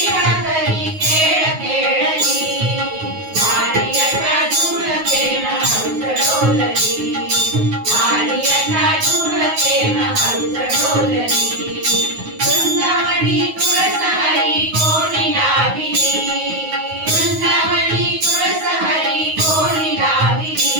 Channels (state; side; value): late; left; 9.4 ms